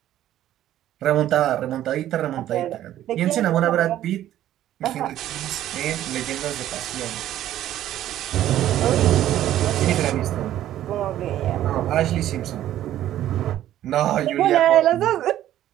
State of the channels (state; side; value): quieter; left; 12.6 dB